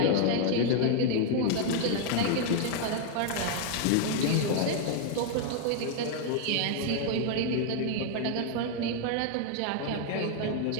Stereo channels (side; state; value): both; different; correlation 0.00